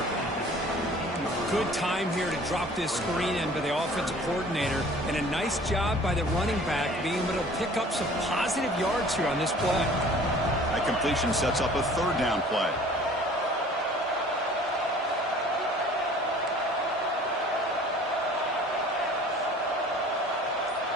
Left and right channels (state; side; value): normal; both; correlation 0.49